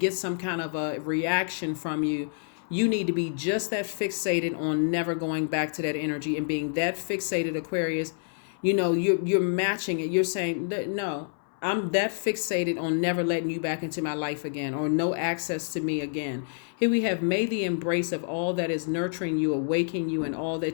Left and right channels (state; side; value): silent; right; 59 dB below the other